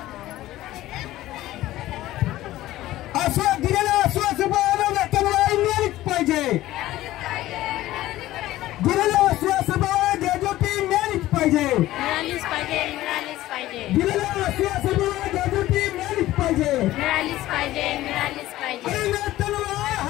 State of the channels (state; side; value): quieter; right; 15.6 dB